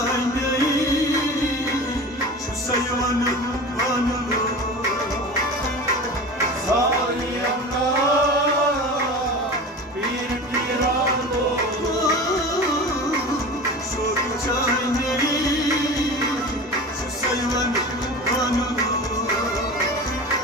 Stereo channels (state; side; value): normal; both; correlation 0.33